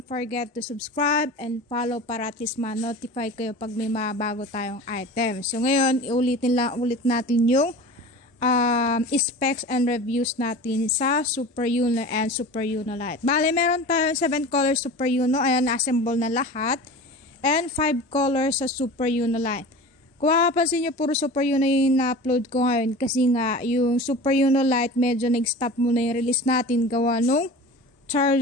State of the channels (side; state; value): both; normal; correlation 0.35